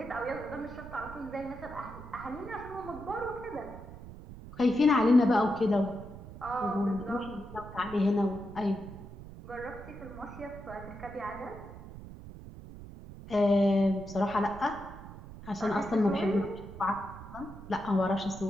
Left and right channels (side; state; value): right; noise; rumble, 14 dB below the sound